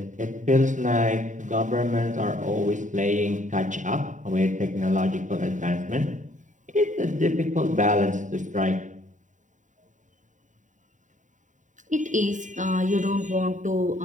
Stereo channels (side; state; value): left; late; 0.36 ms